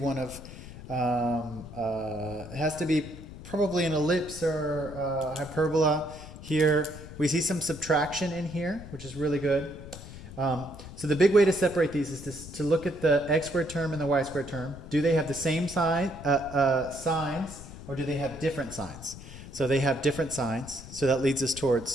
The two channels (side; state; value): left; noise; rumble, 14 dB below the sound